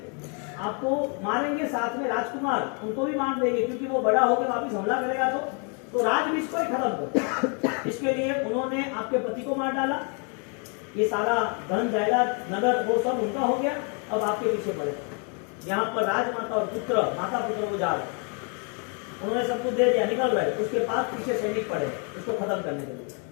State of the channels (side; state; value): right; quieter; 37.8 dB